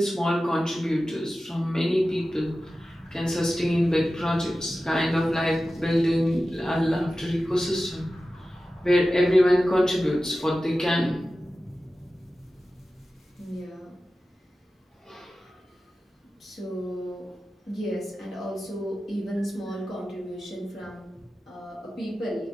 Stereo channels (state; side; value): normal; both; correlation 0.94